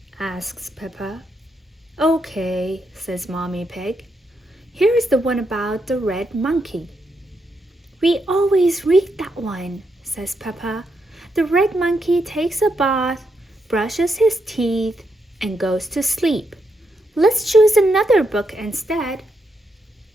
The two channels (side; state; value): both; normal; correlation 0.81